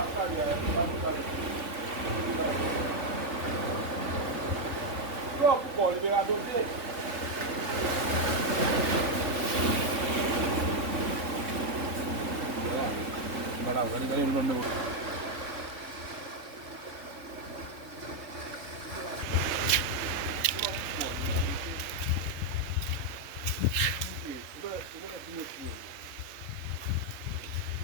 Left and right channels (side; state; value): left; late; 3.6 ms